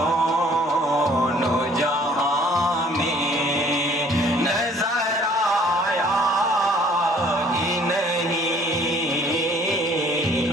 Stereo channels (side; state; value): both; normal; correlation 0.57